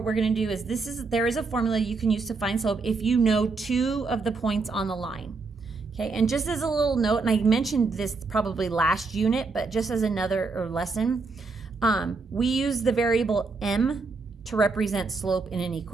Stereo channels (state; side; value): quieter; left; 4.1 dB